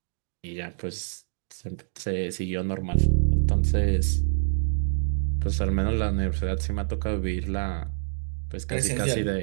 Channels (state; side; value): silent; left; digital silence